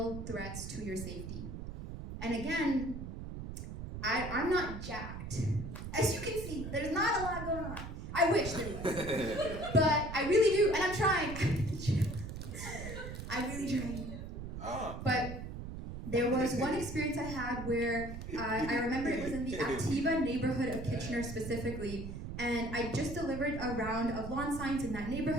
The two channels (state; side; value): noise; right; rumble, 8 dB below the sound